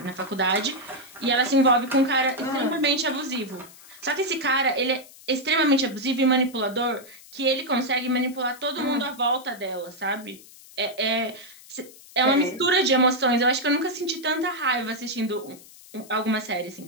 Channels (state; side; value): noise; left; hiss, 21 dB below the sound